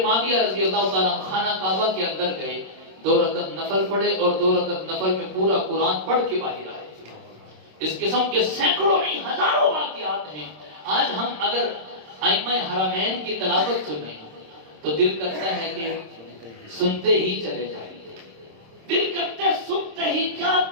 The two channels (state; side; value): late; left; 26 ms